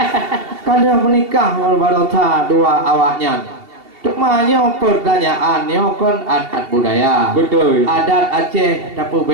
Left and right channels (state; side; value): late; left; 2.7 ms